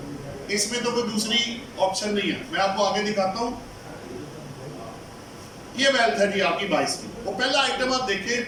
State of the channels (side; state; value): both; identical; correlation 1.00